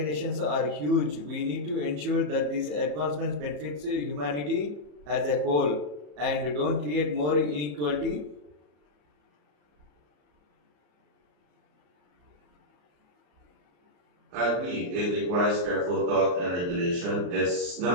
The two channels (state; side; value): late; left; 34 ms